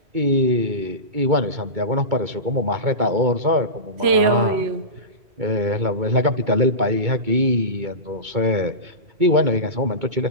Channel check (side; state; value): left; late; 2.2 ms